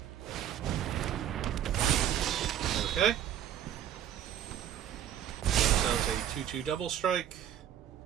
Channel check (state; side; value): quieter; left; 10.5 dB